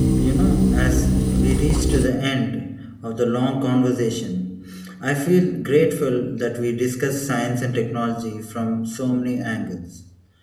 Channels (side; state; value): both; identical; correlation 1.00